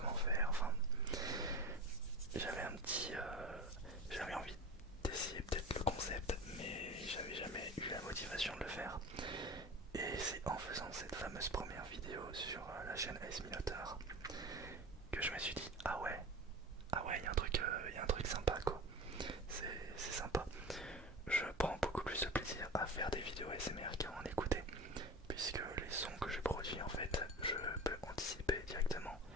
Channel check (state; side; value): normal; both; correlation 0.32